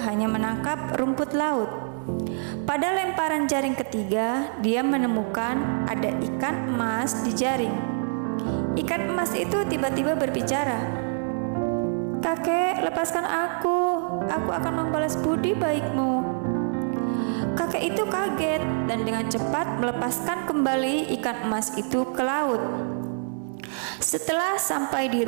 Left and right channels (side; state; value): left; silent; 61 dB below the other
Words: menangkap rumput laut. Pada lemparan jaring ketiga, dia menemukan ada ikan emas di jaring. Ikan emas itu tiba-tiba berbicara, "Kakek, lepaskan aku akan membalas budi baikmu." Kakek itu kaget dan dengan cepat melepaskan kembali ikan emas itu ke laut. Setelah sampai di